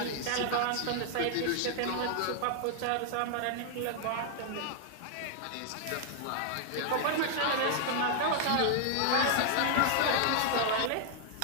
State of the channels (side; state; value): both; different; correlation 0.00